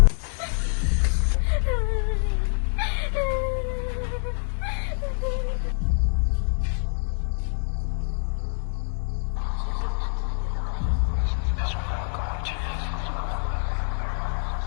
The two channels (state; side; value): silent; right; digital silence